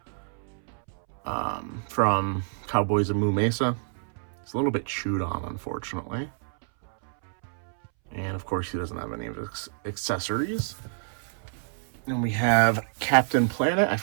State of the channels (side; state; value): left; silent; 60 dB below the other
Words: from Cowboys of Moo Mesa. It's a little bit chewed on, unfortunately. And of course, he doesn't have any of his accessories. And we have Captain Planet. I